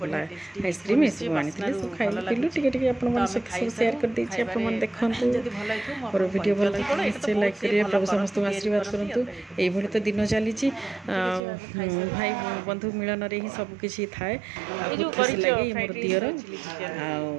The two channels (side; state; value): left; drops out; at 11.4 s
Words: ଆଇସ୍କ୍ରିମ୍ ଏସବୁ ଆଣିଥିଲେ ସବୁ ଖାଇଲୁ ପିଇଲୁ ଟିକେ ଟିକେ ଆପଣମାନଙ୍କ ସହିତ ସବୁ ସେୟାର କରିଦେଇଛି ଆପଣମାନେ ଦେଖନ୍ତୁ ମୋର ଭିଡ଼ିଓ ଭଲ ଲାଗିଥିଲା ନିଶ୍ଚୟ ଲାଇକ୍ କରିବେ ପ୍ରଭୁ ସମସ୍ତଙ୍କୁ ଆଶୀର୍ବାଦ କରନ୍ତୁ ଏଇଭଳି ତ ଦିନ ଚାଲିଛି ଭାଇ ବନ୍ଧୁ ମିଳନରେ ହିଁ ସବୁକିଛି ଥାଏ ଆଉ ବହୁତ ଖୁସି ଲାଗେ ଇଏ ମୋର ଦିଅର ଆଉ